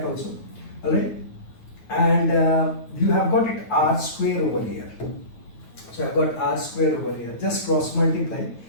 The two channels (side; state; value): right; late; 9.3 ms